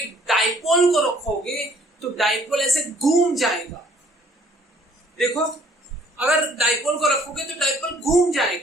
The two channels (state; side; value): normal; both; correlation 0.59